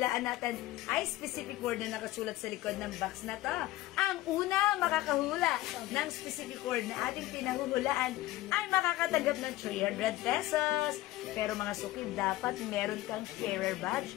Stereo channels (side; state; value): right; quieter; 16.9 dB